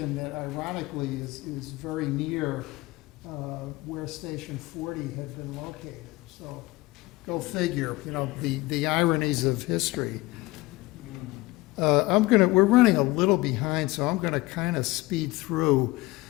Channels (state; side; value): quieter; right; 20.1 dB